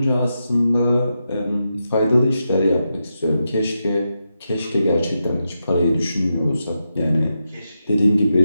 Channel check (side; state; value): both; inverted; correlation -0.86